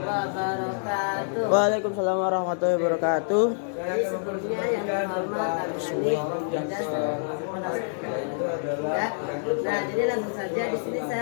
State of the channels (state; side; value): silent; right; 60 dB below the other